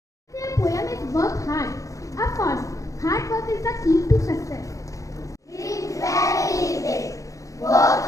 Their poem is work hard. Of course, hard work is the key to success. Dream very big. Work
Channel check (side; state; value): right; late; 0.16 ms